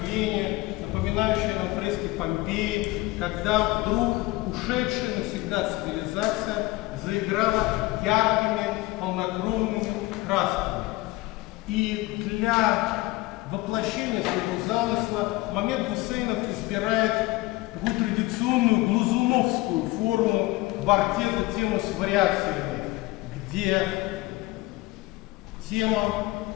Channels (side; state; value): right; quieter; 20.3 dB